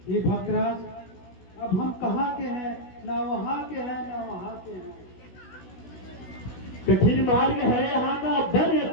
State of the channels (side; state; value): right; late; 16 ms